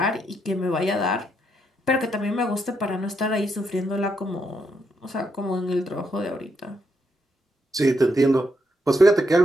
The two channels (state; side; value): normal; both; correlation 0.78